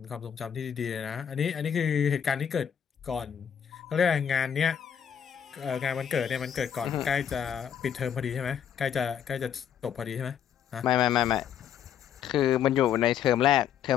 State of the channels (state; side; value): quieter; right; 8.8 dB